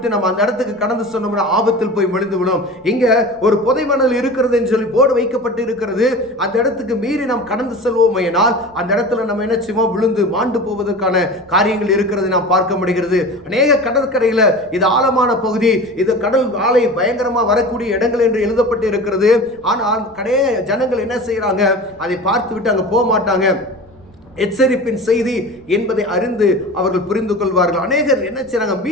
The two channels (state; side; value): noise; right; rumble, 28 dB below the sound